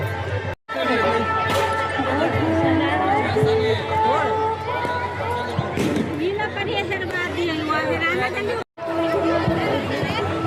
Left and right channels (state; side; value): identical; both; correlation 1.00